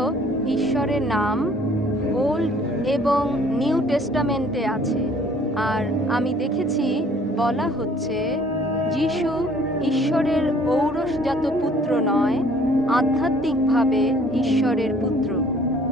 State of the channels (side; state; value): both; normal; correlation 0.57